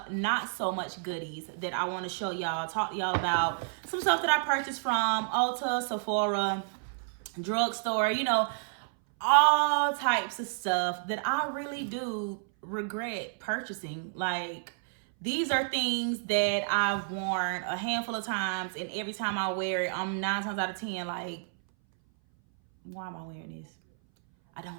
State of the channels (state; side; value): silent; left; 58 dB below the other